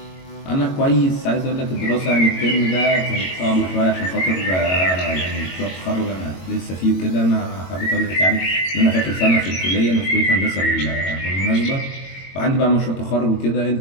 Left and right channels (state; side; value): late; right; 22 ms